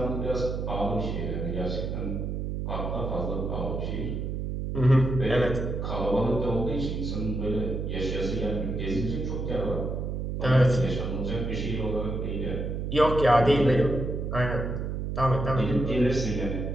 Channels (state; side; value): noise; right; hum, 3 dB below the sound